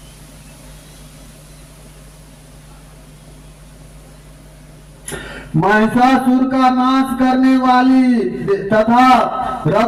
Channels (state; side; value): identical; both; correlation 1.00